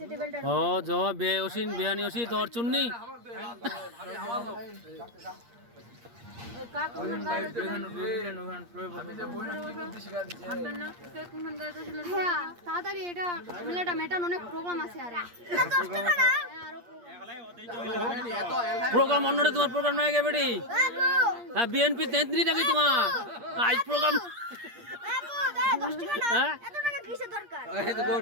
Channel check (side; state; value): left; late; 8.5 ms